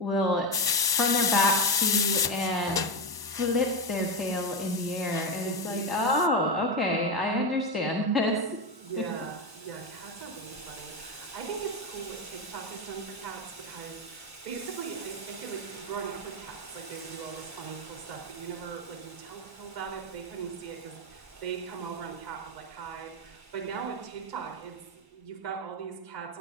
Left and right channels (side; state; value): left; late; 1.0 ms